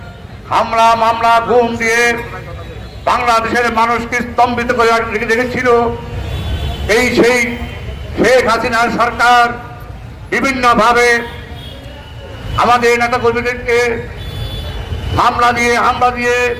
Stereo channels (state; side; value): identical; both; correlation 1.00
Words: হামলা, মামলা, গুম দিয়ে বাংলাদেশের মানুষকে স্তম্ভিত করে রেখেছিল এই সেই শেখ হাসিনার সরকার। বিভিন্নভাবে আমাদের নেতাকর্মীদেরকে হামলা দিয়ে